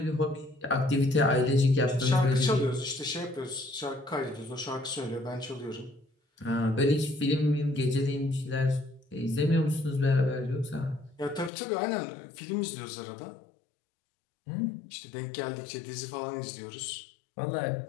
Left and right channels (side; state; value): right; drops out; at 11.5 s